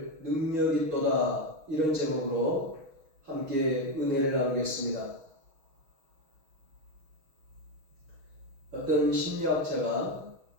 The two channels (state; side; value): late; left; 6.3 ms